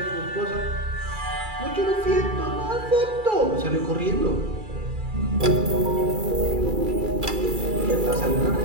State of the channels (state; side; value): late; left; 2.3 ms